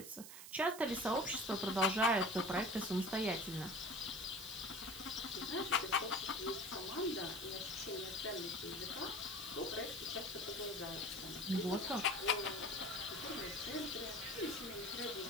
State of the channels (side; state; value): right; noise; hiss, 12 dB below the sound